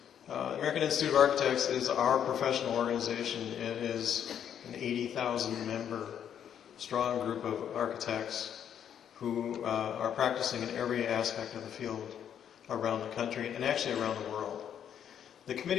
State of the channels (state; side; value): quieter; right; 9.1 dB